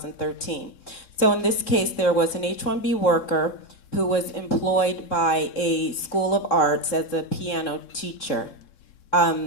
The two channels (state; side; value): late; right; 3.6 ms